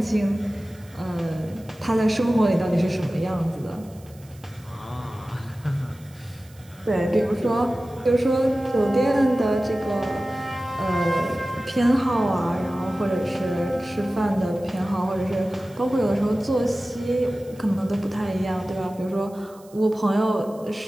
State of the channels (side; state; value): right; noise; hiss, 26 dB below the sound